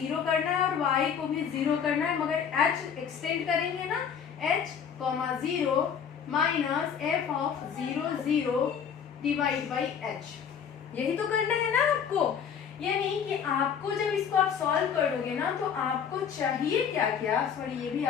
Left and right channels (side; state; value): right; quieter; 7.5 dB